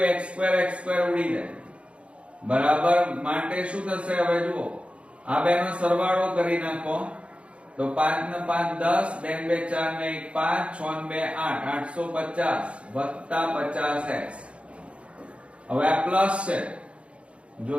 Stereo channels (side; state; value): left; late; 0.060 ms